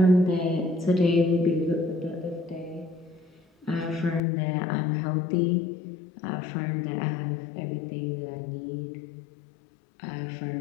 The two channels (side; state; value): right; drops out; at 4.2 s